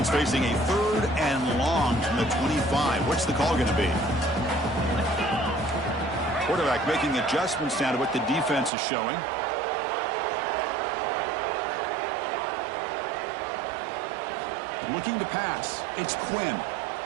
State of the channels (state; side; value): drops out; left; at 8.7 s